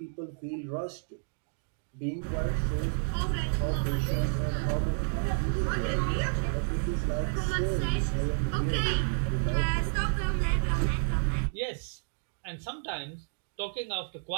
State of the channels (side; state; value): left; silent; digital silence